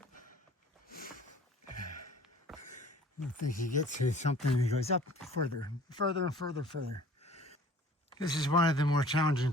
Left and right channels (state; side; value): normal; both; correlation 0.49